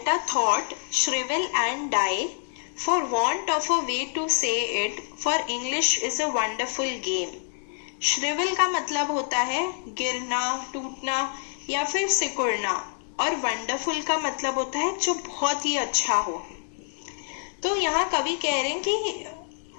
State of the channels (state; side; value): silent; right; 60 dB below the other